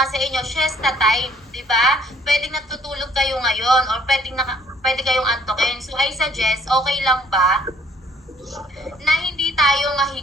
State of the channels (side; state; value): both; normal; correlation 0.61